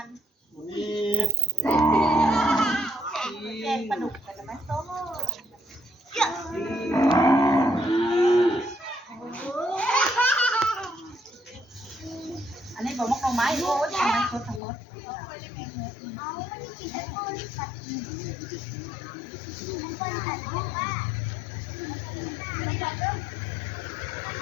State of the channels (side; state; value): right; drops out; at 14.6 s